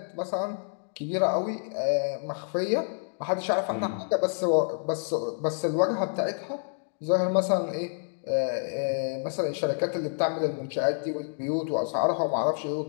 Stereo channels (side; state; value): right; silent; digital silence